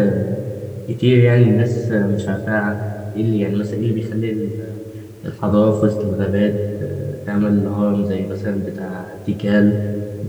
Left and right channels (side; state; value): both; identical; correlation 1.00